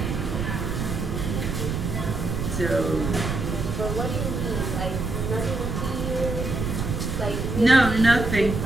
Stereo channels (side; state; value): right; noise; rumble, 2 dB below the sound